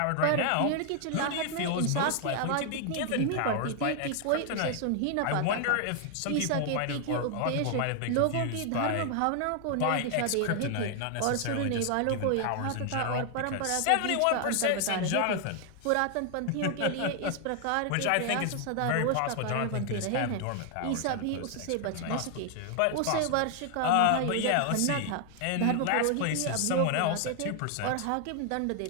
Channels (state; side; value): different; both; correlation 0.00